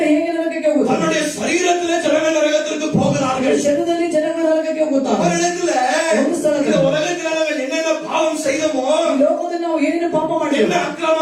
ಹೇಗೆ ನರಕಕ್ಕೆ ಹೋಗುತ್ತಾರೆ? தன்னுடைய சரீரத்திலே ஜனங்கள் நரகத்திற்கு போகிறார்கள். ಶರೀರದಲ್ಲಿ ಜನಗಳು ನರಕಕ್ಕೆ ಹೋಗುತ್ತಾರೆ. அவரிடத்துல ಒಂದು ಸ್ಥಳದಲ್ಲಿ இந்த உலகத்தில் நாங்கள் என்னென்ன பாவம் செய்தோமோ, ಈ ಲೋಕದಲ್ಲಿ ನಾವು ಏನೇನು ಪಾಪ என்ன ಮಾಡಿದ್ದೇವೆ,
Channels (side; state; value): both; identical; correlation 1.00